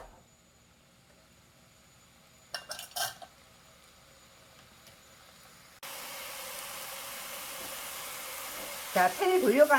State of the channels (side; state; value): both; identical; correlation 1.00